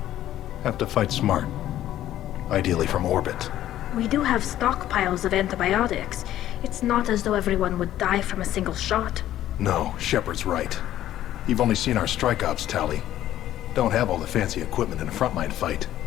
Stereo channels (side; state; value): right; quieter; 12.8 dB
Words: Have to fight smart. Ideally from orbit. We do have stockpiles of antibiotics. It's not as though everyone would die from a single shot. No, Shepard's right. You've only seen our strike ops tally. Don't have all the fancy equipment in a frontline fight.